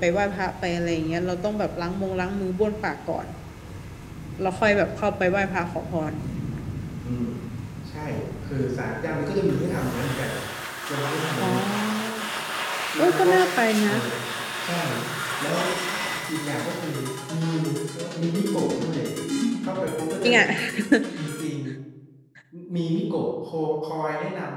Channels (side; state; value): both; identical; correlation 1.00